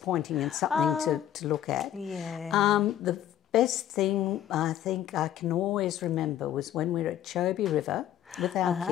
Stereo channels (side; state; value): right; quieter; 11.3 dB